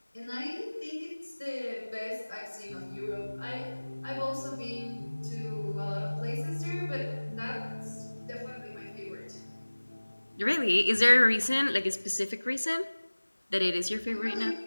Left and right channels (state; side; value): inverted; both; correlation -1.00